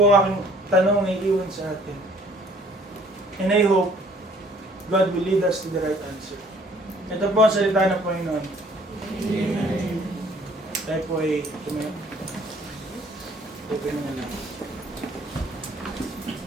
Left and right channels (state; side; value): normal; both; correlation 0.57